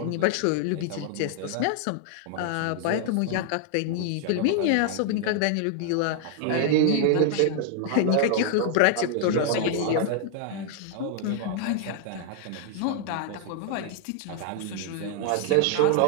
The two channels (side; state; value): both; different; correlation 0.00